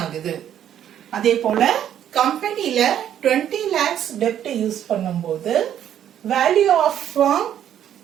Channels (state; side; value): quieter; left; 10.3 dB